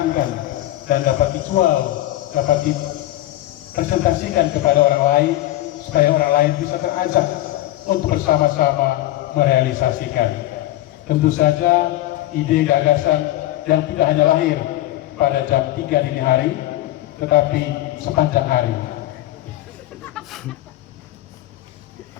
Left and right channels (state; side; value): quieter; right; 15.4 dB